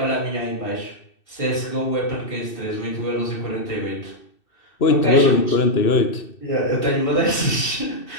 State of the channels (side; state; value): right; late; 2.6 ms